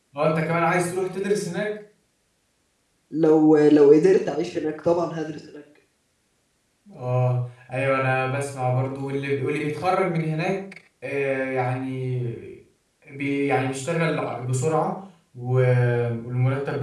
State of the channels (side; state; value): both; identical; correlation 1.00